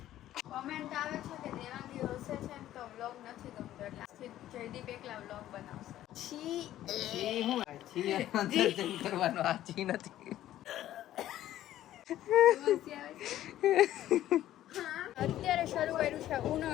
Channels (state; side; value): quieter; right; 13.1 dB